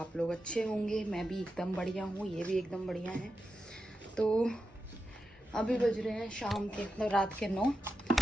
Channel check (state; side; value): normal; both; correlation 0.89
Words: लोग अच्छे होंगे। मैं भी एकदम बढ़िया हूँ, ये भी एकदम बढ़िया है। तो अभी बज रहे हैं शाम के, मतलब रात के 9,